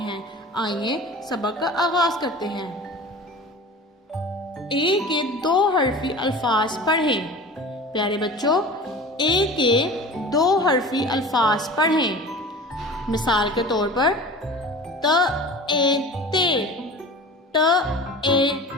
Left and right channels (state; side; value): normal; both; correlation 0.37